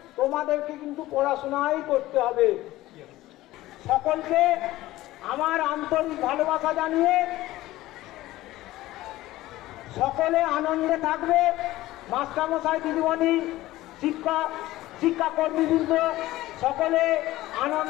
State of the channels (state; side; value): quieter; right; 16.7 dB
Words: তোমাদেরকে কিন্তু পড়াশোনাই করতে হবে। সকলকে আমার আন্তরিক ভালোবাসা জানিয়ে সকলে আনন্দে থাকবে। মাস্টারমশাই, দিদিমণি, শিক্ষাকর্মীবৃন্দ সকলে